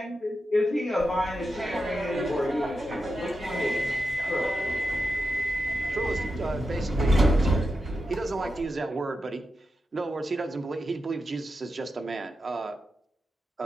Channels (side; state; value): both; normal; correlation 0.89